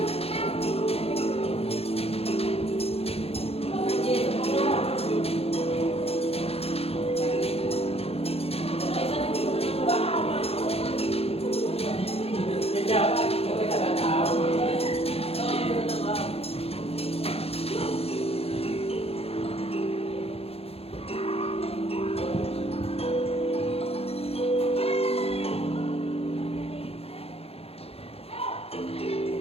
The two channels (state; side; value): late; right; 0.29 ms